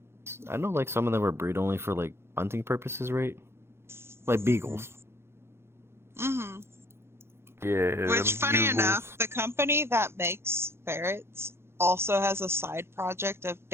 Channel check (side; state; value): left; late; 0.12 ms